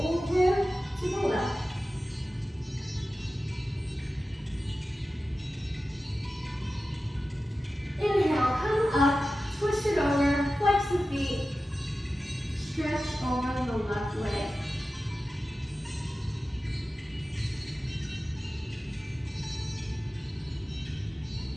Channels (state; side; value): normal; both; correlation 0.94